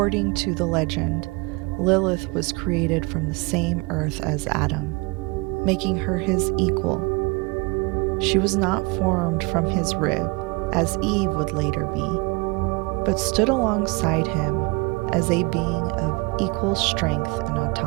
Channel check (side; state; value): left; quieter; 27.1 dB